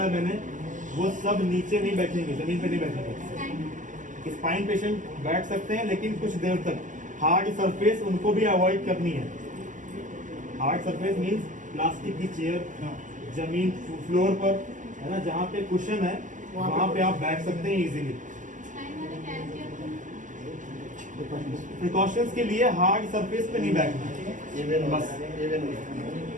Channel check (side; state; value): left; late; 0.37 ms